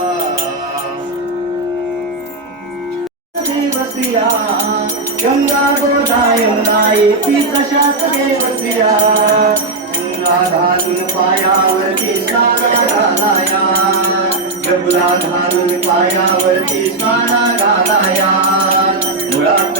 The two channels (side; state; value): left; quieter; 3.3 dB